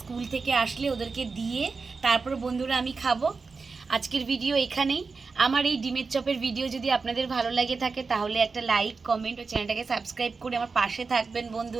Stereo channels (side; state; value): left; quieter; 4.5 dB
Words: স্কুল থেকে আসলে ওদেরকে দিয়ে তারপর বন্ধুরা আমি খাবো। আজকের ভিডিও এখানেই। আমার এই ডিমের চপের ভিডিও যদি আপনাদের ভালো লাগে থাকে তাহলে একটা লাইক, কমেন্ট ও চ্যানেলটাকে সাবস্ক্রাইব করে আমার পাশে থাকবেন